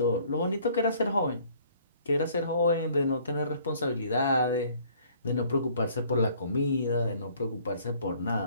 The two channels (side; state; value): both; inverted; correlation -0.58